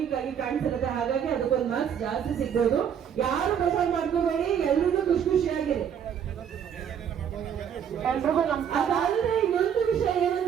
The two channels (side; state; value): left; quieter; 8.4 dB